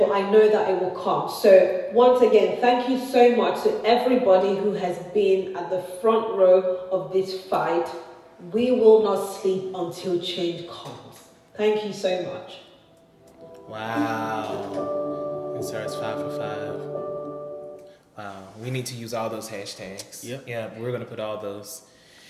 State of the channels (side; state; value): both; identical; correlation 1.00